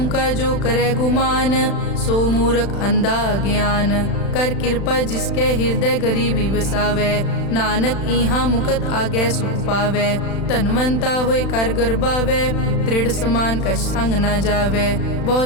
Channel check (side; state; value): right; late; 36 ms